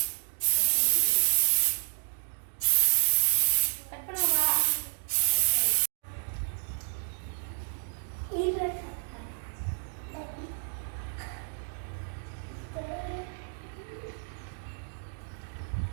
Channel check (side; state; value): left; silent; digital silence